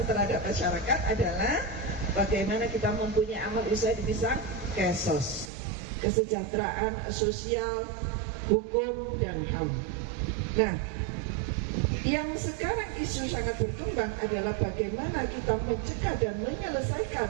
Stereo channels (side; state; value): left; drops out; at 5.5 s